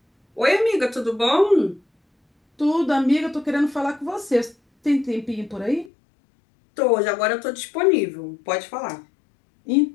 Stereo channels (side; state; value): right; drops out; at 5.9 s